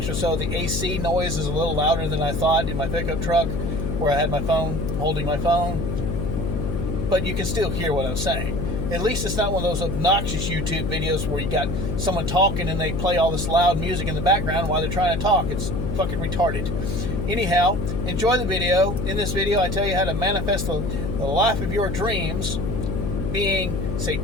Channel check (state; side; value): noise; left; hum, 2 dB below the sound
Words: or so, the AC noise is a little louder than I thought in my pickup truck where I had my phone, holding my phone. But you can still hear what I'm saying. At least it's not one of those obnoxious YouTube videos where you got someone talking and they play all this loud music in the background while they're trying to talk. It's fucking retarded. Anyhow, enjoy the video. In this video, I tell you how to manifest the life of your dreams being